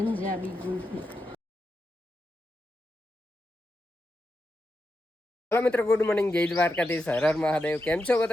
ગુલ્ફી. હેલો મિત્રો, ગુડ મોર્નિંગ, જય દ્વારકાધીશ, હર હર મહાદેવ. કેમ છો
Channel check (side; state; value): both; normal; correlation 0.88